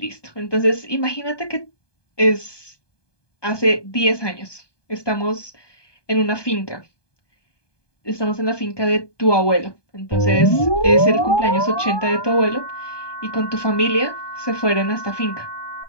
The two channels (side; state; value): right; late; 1.2 ms